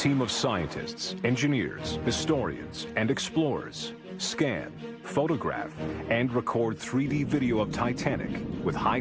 of scientists, engineers, historians, and explorers scan, photograph, and record 3D video of Titanic with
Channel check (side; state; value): both; identical; correlation 1.00